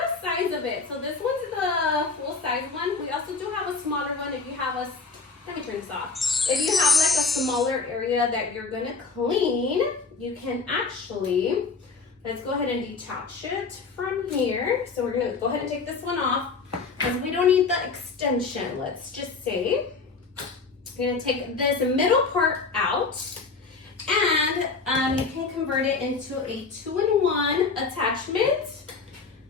size of it. So this one's the full size one. We also do have a smaller one if you have a, let me turn this off. If you have like a smaller area that you're gonna clean, you can actually, let's go ahead and detach it from here. So we're gonna go ahead and take this one off because we don't need the extension, let's just say. We're gonna take this middle part out and you can convert it into a 2-in-1 attachment.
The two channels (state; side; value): quieter; right; 4.5 dB